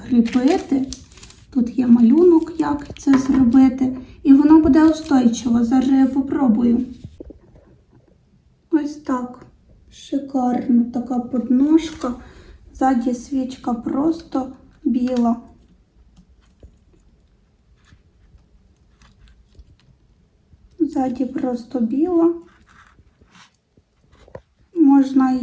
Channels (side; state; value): both; identical; correlation 1.00